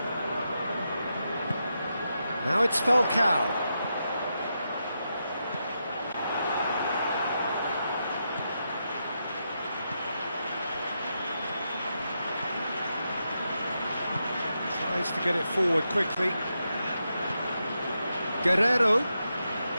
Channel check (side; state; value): both; inverted; correlation -0.85